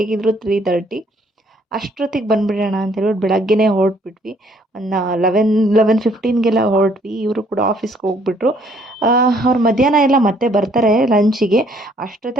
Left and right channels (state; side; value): normal; both; correlation 0.64